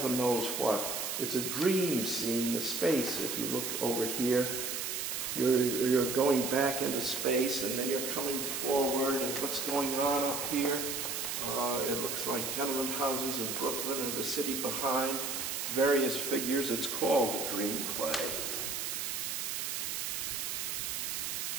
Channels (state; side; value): noise; right; hiss, 2 dB below the sound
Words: knows what. It's a dream scene, the space. If you look over here, you're going back into space, and then you're coming forward, and what's going on up here? It looks like tenement houses in Brooklyn and the city behind, various figures. It's called a dream play.